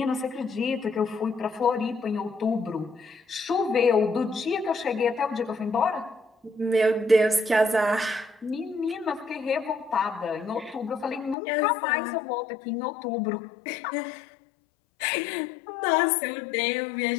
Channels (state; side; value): drops out; right; at 11.4 s